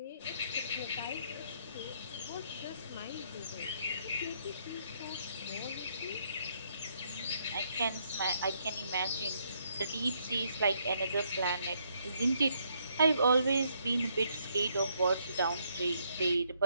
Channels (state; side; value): inverted; both; correlation -0.72